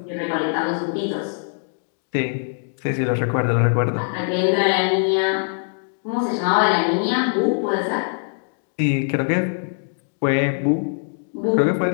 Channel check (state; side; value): silent; right; digital silence